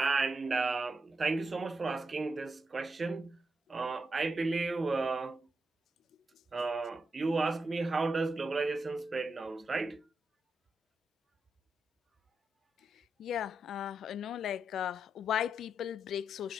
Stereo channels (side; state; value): both; normal; correlation 0.85